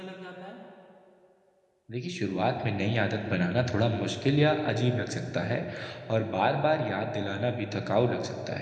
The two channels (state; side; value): identical; both; correlation 1.00